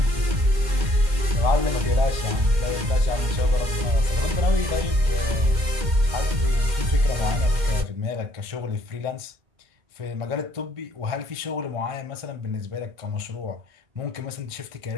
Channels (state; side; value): late; left; 2.1 ms